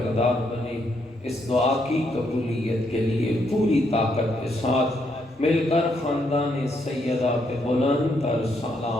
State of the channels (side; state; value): both; normal; correlation 0.75